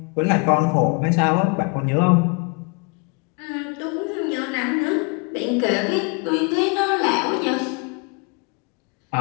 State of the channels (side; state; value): right; quieter; 34.2 dB